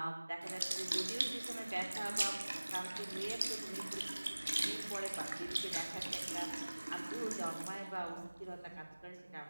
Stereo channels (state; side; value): inverted; both; correlation -1.00